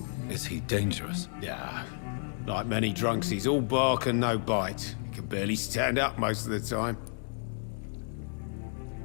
Is he dangerous? Yeah, like many drunks, he's all bark and no bite. He can barely stand up most of the time.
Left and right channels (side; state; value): right; silent; digital silence